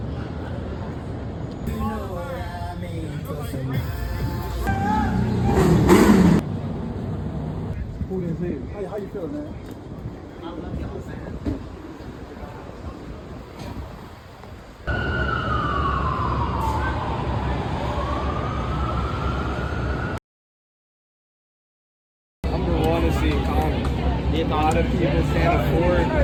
How you feeling, man? Number one is the economy. A lot of people can't afford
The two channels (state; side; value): identical; both; correlation 1.00